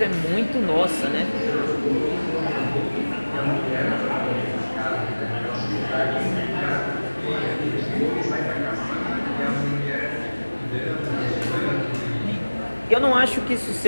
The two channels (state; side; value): inverted; both; correlation -1.00